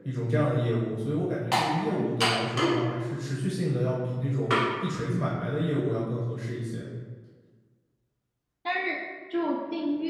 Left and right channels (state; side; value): identical; both; correlation 1.00